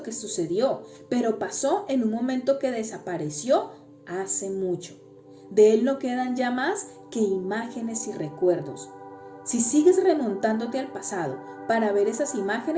que sucedió, pero pasó en un momento que desapareció hace mucho. De él no quedan ya más que imágenes y recuerdos. Si sigues remontándote al pasado para ver esas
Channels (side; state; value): both; identical; correlation 1.00